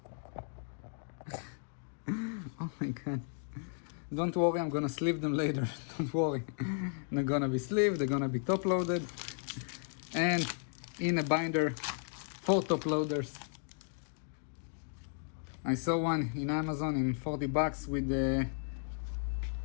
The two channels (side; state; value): right; silent; digital silence